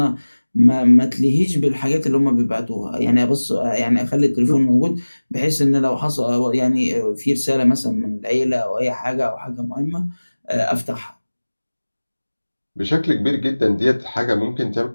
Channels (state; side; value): inverted; both; correlation -1.00